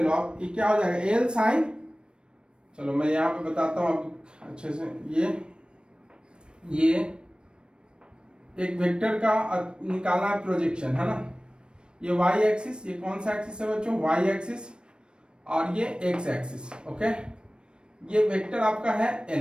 लो आप, ये क्या हो जाएगा एल साइन, चलो मैं यहाँ पे बताता हूँ आपको अच्छे से, ये एक वेक्टर का निकालना है प्रोजेक्शन, है ना, ये वाई एक्सिस, ये कौन सा एक्सिस है बच्चों, वाई एक्सिस, और ये एक्स एक्सिस। ओके, ये वेक्टर आपका है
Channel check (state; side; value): late; left; 0.054 ms